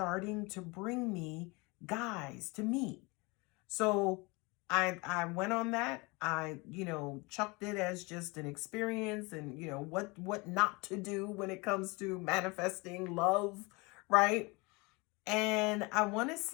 to bring me guys to meet. So I went on that. I, chucked it as just an experience and, what not to do when it comes to manifesting love, right? And I want to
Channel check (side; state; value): right; quieter; 26.5 dB